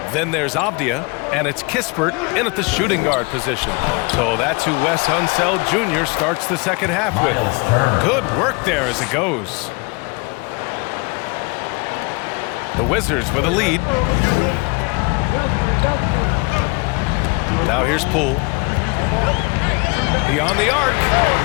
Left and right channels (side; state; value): right; quieter; 29.3 dB